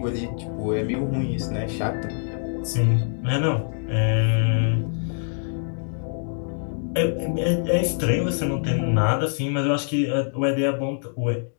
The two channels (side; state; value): right; silent; digital silence